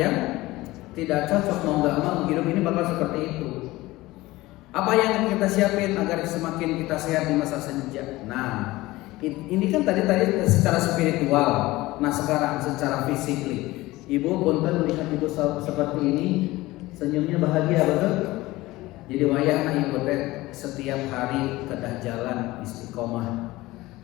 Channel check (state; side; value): quieter; right; 18.9 dB